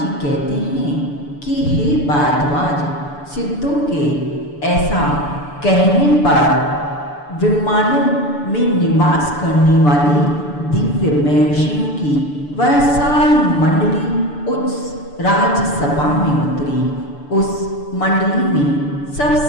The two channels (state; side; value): late; right; 6.9 ms